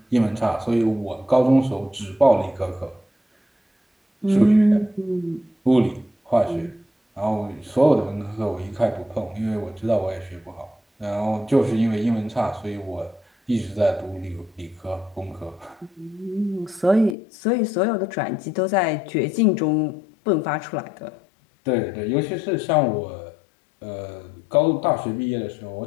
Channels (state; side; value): drops out; right; at 17.2 s